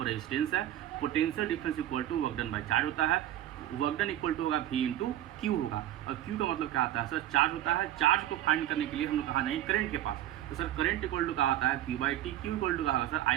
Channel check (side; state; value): left; quieter; 12.8 dB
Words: रेजिस्टेंस है, potential difference equal to work done by charge होता है, वर्क डन इक्वल टू होगा V इंटू क्यू होगा, और क्यू का मतलब क्या आता है सर, चार्ज होता है। चार्ज को फाइंड करने के लिए हम लोग कहाँ जाएंगे, करंट के पास, तो सर करंट इक्वल टू क्या आता है Q/T, क्यू इक्वल टू क्या होगा सर I